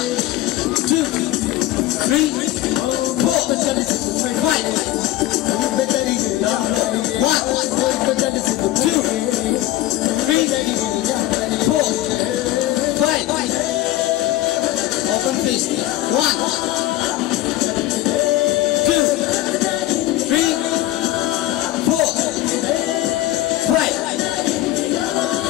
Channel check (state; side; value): quieter; right; 15.3 dB